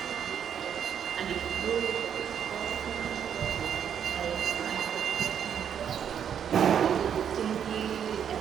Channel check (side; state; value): left; quieter; 8.5 dB